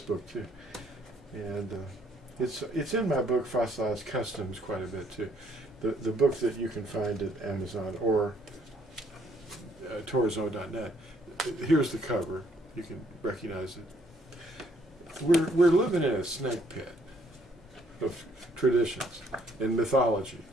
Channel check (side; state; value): both; normal; correlation 0.66